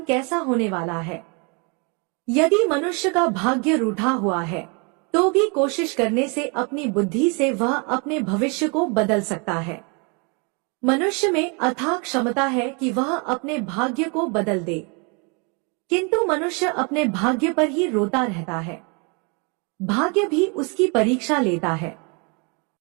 कैसा होने वाला है। यदि मनुष्य का भाग्य रूठा हुआ है तो भी कोशिश करने से अपनी बुद्धि से वह अपने भविष्य को बदल सकता है। मनुष्य में अथाह क्षमता है कि वह अपने भाग्य को बदल दे, किंतु मनुष्य अपने भाग्य पर ही रोता रहता है। भाग्य भी उसकी परीक्षा लेता है।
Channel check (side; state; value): left; quieter; 32.7 dB